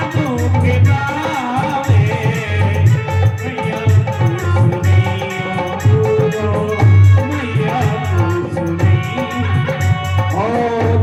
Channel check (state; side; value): identical; both; correlation 1.00